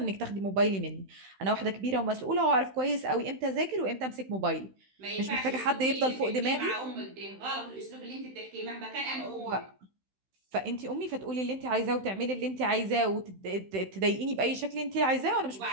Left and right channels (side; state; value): left; late; 16 ms